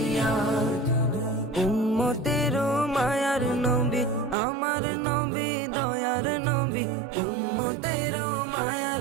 উম্মতের মায়ার নবী আমার নবী দয়ার নবী, উম্মতের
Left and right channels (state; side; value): drops out; left; at 4.4 s